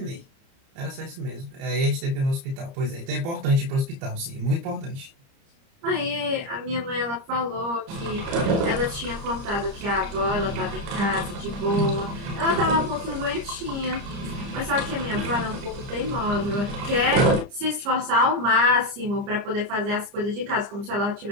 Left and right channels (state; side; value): late; left; 30 ms